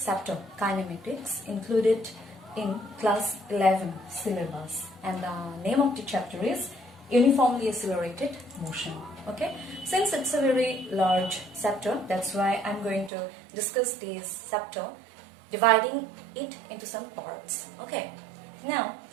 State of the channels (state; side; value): drops out; left; at 13.1 s